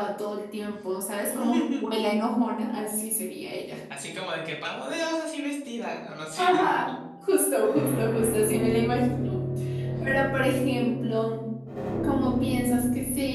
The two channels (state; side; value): identical; both; correlation 1.00